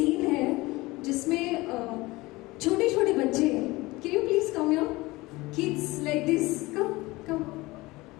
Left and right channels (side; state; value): right; quieter; 21.1 dB